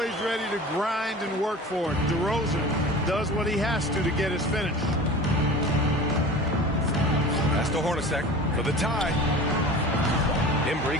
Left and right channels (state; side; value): normal; both; correlation 0.37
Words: ready to grind and work for it. DeRozan does what he has to get his finish. Pass to Hornacek for the tie. Embry